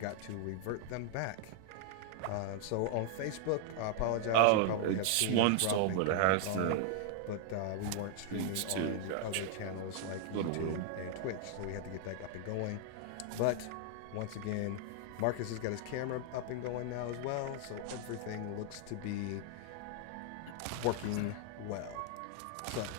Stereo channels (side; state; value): both; different; correlation -0.01